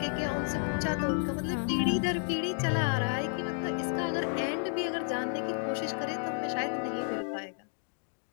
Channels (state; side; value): silent; right; 57 dB below the other